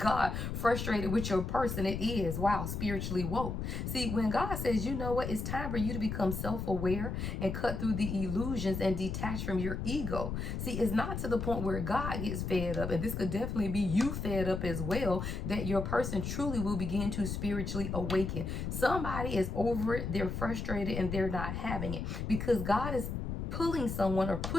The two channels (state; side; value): noise; left; rumble, 4 dB below the sound